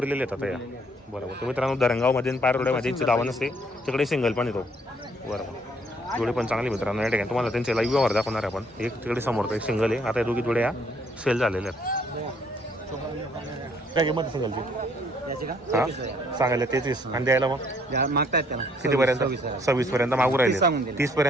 आहेत आता या. बरोबर. तर मित्रांनो धरणगावमध्ये आणि पारवड्यामध्ये यांची दावा नसते. तिकडे सिंगल पण येतो. बरोबर. जोडे पण चांगली मित्रांनो. या ठिकाणी तुम्हाला त्यांचे लाईव्ह व्यवहार दाखवणार आहे आपण. एक तिकडे समोर एक सिंगल आहे. आता या दोघी जोड्या सेल झालेल्या आहेत. काय किंमत सिंगलची? याची का? हा सांगायला 33 आणि द्यायला मग मागतायत त्याला कितीपर्यंत? 26 पर्यंत मागू राहिले. 30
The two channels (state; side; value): normal; both; correlation 0.65